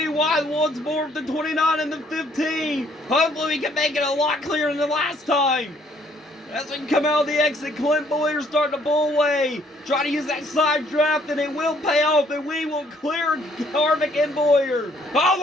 wide once more with the 29 and the 15. Hopefully we can make it a lot clearer than the last time. As we come out of the exit, Clint Bowyer starting to pull away. Try to use that side draft and it will pay off, and we will clear Harvick and Bowyer.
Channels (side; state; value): both; normal; correlation 0.64